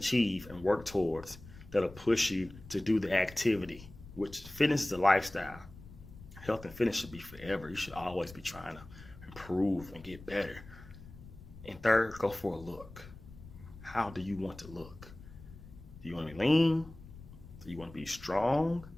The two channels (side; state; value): left; noise; rumble, 17 dB below the sound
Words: and work towards that'll push you to do the activity, which fitness is a lifestyle. Health and fitness should be forever. You should always be trying to improve and get better. And 3rd, go for a look. How do you want to look? Do you want to be lean? Do you want to be strong?